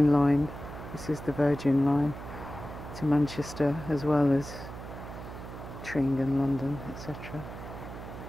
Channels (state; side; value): noise; right; hum, 11 dB below the sound